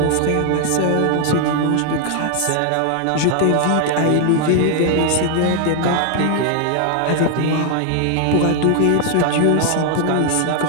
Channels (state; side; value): different; both; correlation 0.00